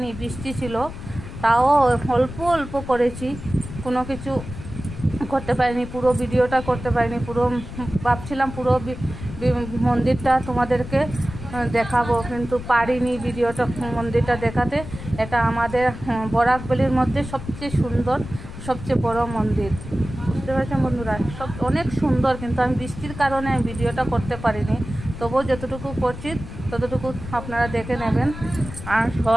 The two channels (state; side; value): noise; left; rumble, 11 dB below the sound